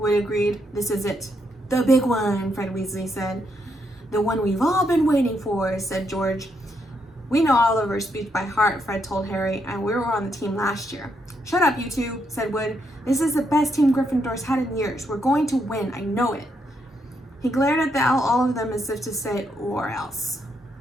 agreed. "This is it." "The big one," Fred Weasley said. "The one we've all been waiting for," said George. "We know Oliver's speech by heart," Fred told Harry, "and we were on the team last year." "Shut up, you two," said Wood. "This is the best team Gryffindor's had in years. We're going to win, I know it." He glared at all of them as if to say, "Or else."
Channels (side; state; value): both; normal; correlation 0.78